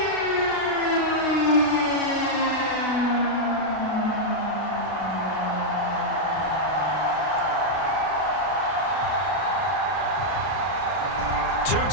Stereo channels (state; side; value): late; right; 32 ms